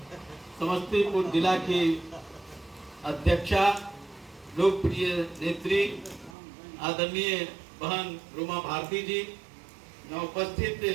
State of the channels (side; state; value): left; drops out; at 6.3 s